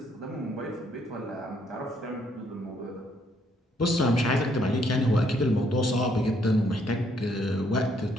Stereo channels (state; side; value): normal; both; correlation 0.70